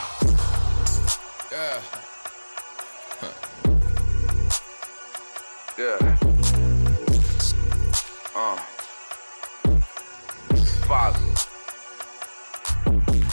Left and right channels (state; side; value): inverted; both; correlation -1.00